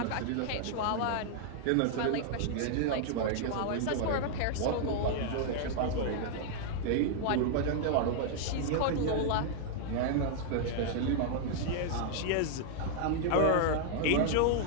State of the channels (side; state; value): both; different; correlation 0.00